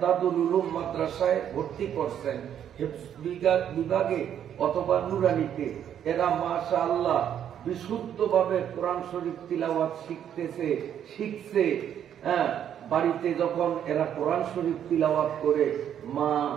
উলুম মাদ্রাসায় ভর্তি করছেন, হিফজ বিভাগে অথবা নুরানিতে। এরা মাশাআল্লাহ বিশুদ্ধভাবে কোরআন শরীফ তিলাওয়াত শিখছে। হ্যাঁ, বাড়িতে যখন এরা কোরআন শরীফ তিলাওয়াত করে, মা,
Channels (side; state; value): left; quieter; 9.6 dB